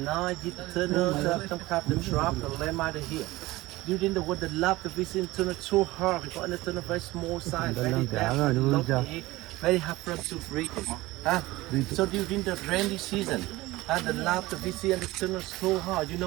night, hit the tunnel, some kind of trap, the land out of here. During the war, the love the visit tunnel so hard. Because in the tunnel very small size, very very hard for us to break it. So during the rainy season, the love the visit and the tunnel so hard. You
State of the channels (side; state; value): left; quieter; 19.1 dB